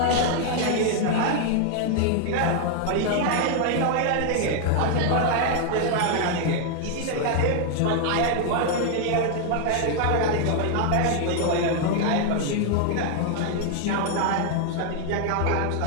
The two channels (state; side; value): different; both; correlation 0.00